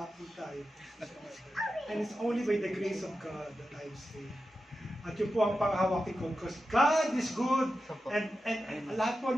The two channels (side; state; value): both; normal; correlation 0.91